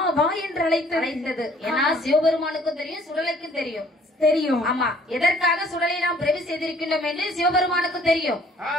வா என்று அழைத்தது. ஏன்னா சிவபெருமானுக்கும் தெரியும், சுடலைக்கும் தெரியும். தெரியும். ஆமா. எதற்காக சுடலை நாம் பிரவி செய்திருக்கின்றோம் என்று சிவபெருமானுக்கும் தெரியும்.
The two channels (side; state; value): both; normal; correlation 0.57